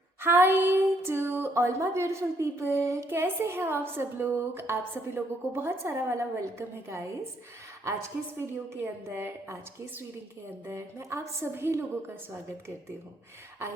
Hi to all my beautiful people. कैसे हैं आप सब लोग? आप सभी लोगों को बहुत सारा वाला वेलकम है गाइस। आज के इस वीडियो के अंदर, आज के इस रीडिंग के अंदर मैं आप सभी लोगों का स्वागत करती हूँ।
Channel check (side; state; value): both; normal; correlation 0.70